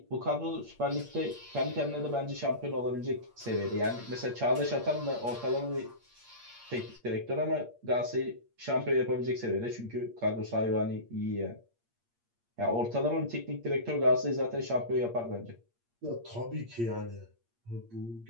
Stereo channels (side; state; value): left; late; 8.6 ms